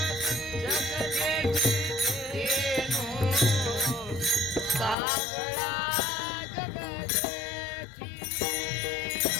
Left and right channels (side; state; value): right; drops out; at 5.0 s